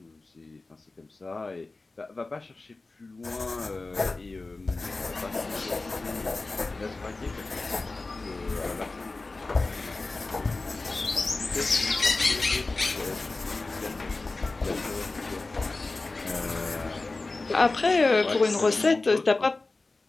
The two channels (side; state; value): right; quieter; 3.4 dB